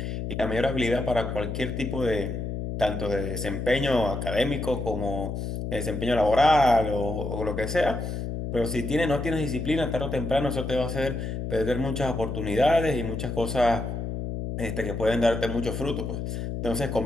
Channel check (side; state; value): left; noise; hum, 4 dB below the sound